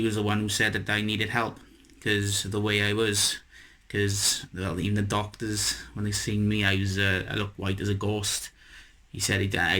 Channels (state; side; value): identical; both; correlation 1.00